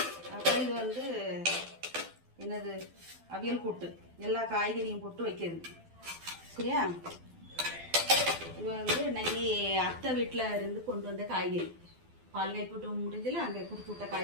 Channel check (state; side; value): late; left; 12 ms